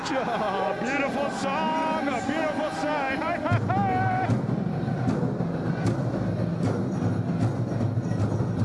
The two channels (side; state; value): both; identical; correlation 1.00